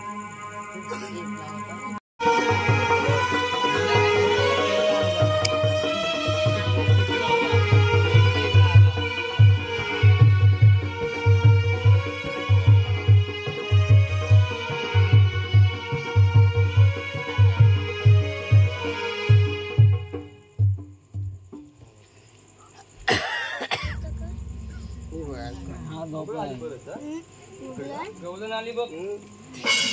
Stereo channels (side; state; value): both; identical; correlation 1.00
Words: गवलन आली बघ.